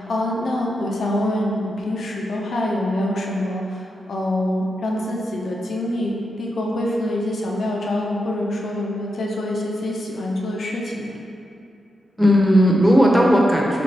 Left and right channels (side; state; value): both; normal; correlation 0.86